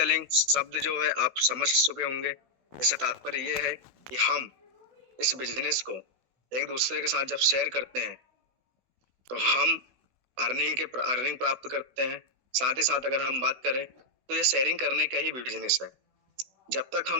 शब्द जो है आप समझ चुके होंगे। इससे तात्पर्य ये है कि हम इस बिजनेस को एक दूसरे के साथ जब शेयर करते हैं तो हम अर्निंग प्राप्त करते हैं। साथ ही साथ अगर हम बात करें तो ये शेयरिंग करने का ही बिजनेस है। जब तक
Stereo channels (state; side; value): late; left; 16 ms